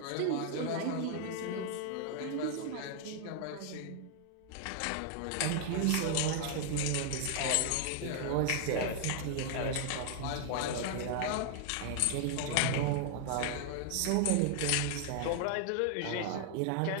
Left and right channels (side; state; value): both; different; correlation 0.00